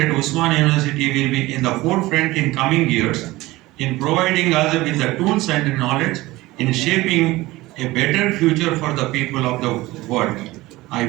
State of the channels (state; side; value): quieter; left; 19.1 dB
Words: Usmania University will be in the forefront in coming years in providing us with the tools and knowledge in shaping a better future for the people of the world. I